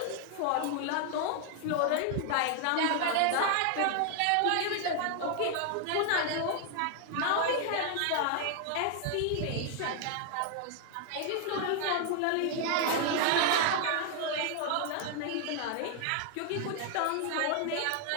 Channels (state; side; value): different; both; correlation 0.00